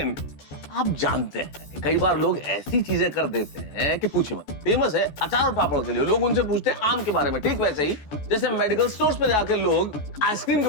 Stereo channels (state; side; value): late; right; 14 ms